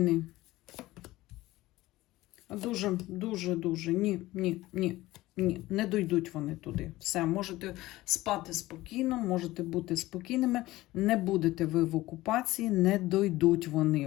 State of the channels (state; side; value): quieter; right; 17.7 dB